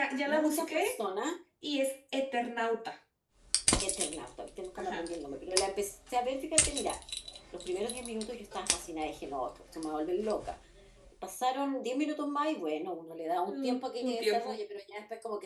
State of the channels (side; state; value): both; identical; correlation 1.00